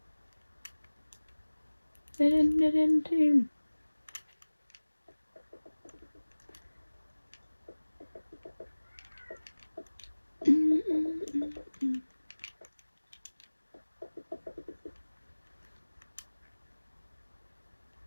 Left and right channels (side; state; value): both; inverted; correlation -1.00